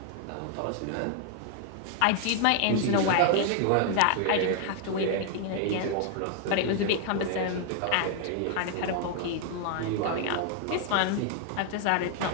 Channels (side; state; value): both; different; correlation 0.00